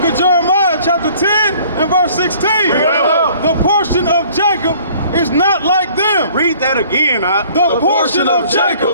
of Jeremiah, chapter 10 and verse 16. The portion of Jacob is not like them. Read that again, The portion of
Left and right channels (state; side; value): inverted; both; correlation -0.54